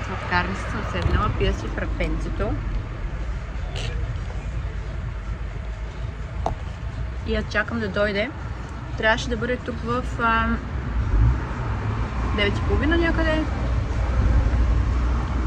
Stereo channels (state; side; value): identical; both; correlation 1.00